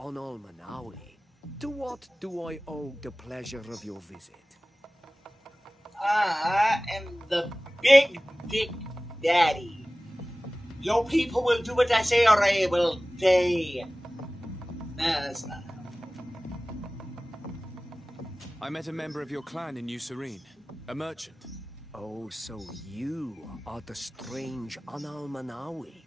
Manawi. To what do I owe the pleasure of your visit? I am the Big Dick Daddy. Your people will do what I say or I will die. No, that's not. I met a member of your clan in New Serene, a merchant. Oh, so you are the strange Analmanawi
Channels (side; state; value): both; normal; correlation 0.98